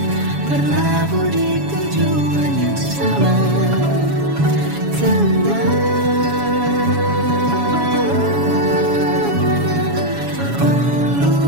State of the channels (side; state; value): left; late; 7.2 ms